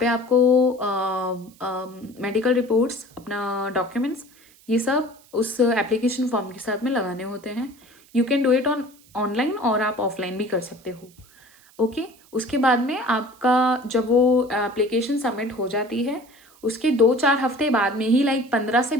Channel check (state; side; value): noise; right; hiss, 28 dB below the sound